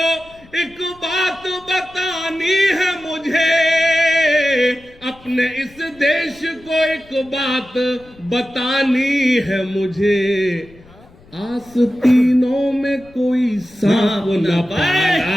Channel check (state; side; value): noise; left; rumble, 26 dB below the sound